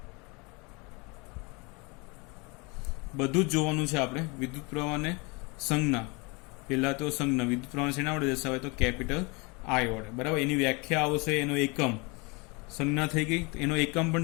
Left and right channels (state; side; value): quieter; right; 28.6 dB